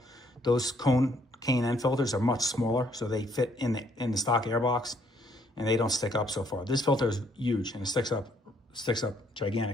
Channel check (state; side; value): normal; both; correlation 0.67